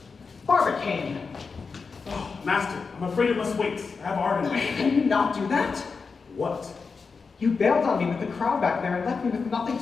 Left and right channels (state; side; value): quieter; right; 4.9 dB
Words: Barbicane! Oh, Master, I'm afraid it must wait. I have art in me. Can you not do that? What? You bailed on me with the crowd back there and left me with nothing